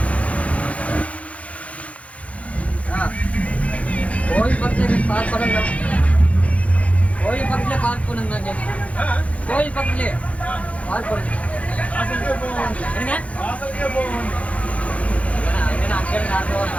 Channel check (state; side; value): late; right; 0.065 ms